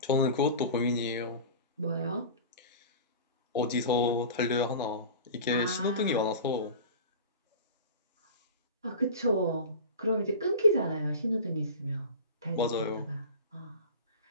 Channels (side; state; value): both; inverted; correlation -0.34